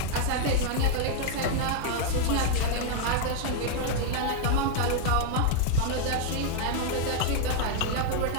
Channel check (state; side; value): different; both; correlation 0.00